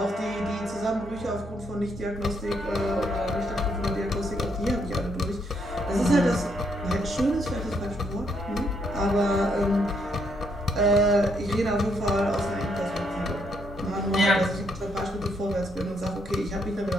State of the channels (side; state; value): both; normal; correlation 0.73